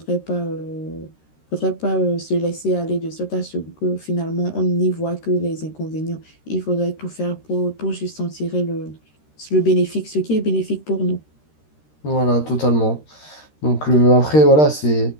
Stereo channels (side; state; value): right; late; 13 ms